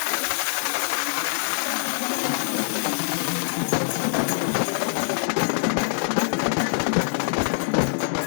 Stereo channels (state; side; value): silent; right; digital silence